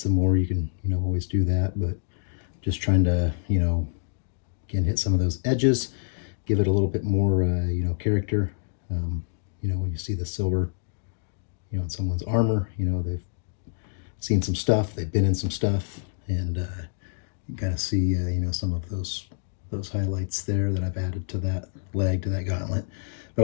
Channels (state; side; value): silent; right; digital silence